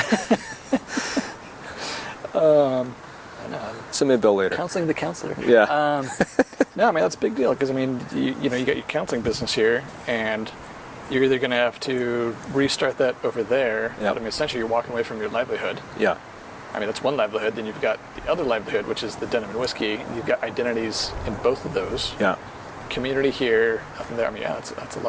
Send me a bill later. Counseling the counselor. Yeah. No, I mean, that's a big deal because, I mean, you got your counseling business here, and you're either going to have to restart that over there. Yep. But I mean, essentially, you're walking away from your livelihood. Yeah. I mean, that's one livelihood. Then you've got the other livelihood, which is the denim and whiskey. You've got identities in both of those. Yeah. Community here, nothing there. I mean, yeah, that's a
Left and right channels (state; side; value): identical; both; correlation 1.00